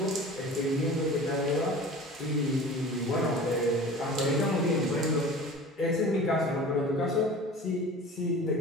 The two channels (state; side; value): normal; both; correlation 0.39